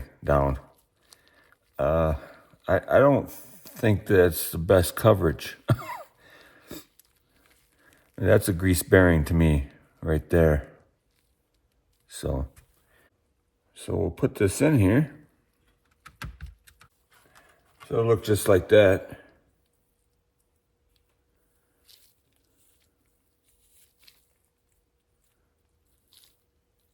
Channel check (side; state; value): both; identical; correlation 1.00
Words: down. I don't think that's the best coverage. That's a grease bearing to me right there. So we'll put this in here. So it'll look just like that.